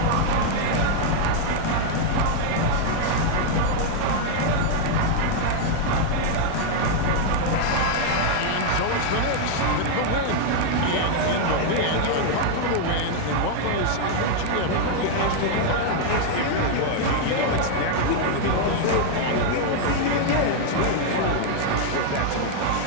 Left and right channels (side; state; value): both; different; correlation 0.00